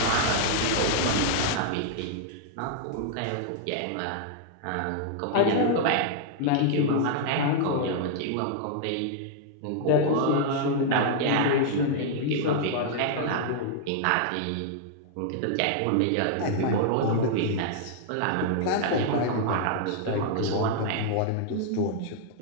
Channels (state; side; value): different; both; correlation -0.01